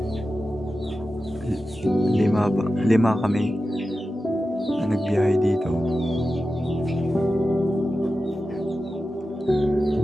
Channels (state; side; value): normal; both; correlation 0.93